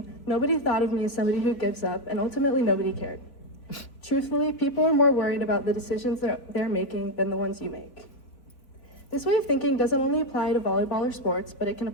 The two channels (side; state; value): right; late; 4.1 ms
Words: nobody thought of me as somebody who gives up, and ultimately nobody cared. Truthfully, people are more worried about the decisions they're making than the ones you make. This way of thinking doesn't only apply to volleyball or sports, but it can